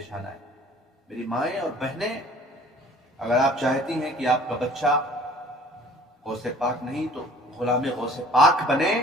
آنا ہے. میری مائیں اور بہنیں اگر آپ چاہتی ہیں کہ آپ کا بچہ غوث پاک نہیں تو غلام غوث پاک بنے،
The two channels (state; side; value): normal; both; correlation 0.51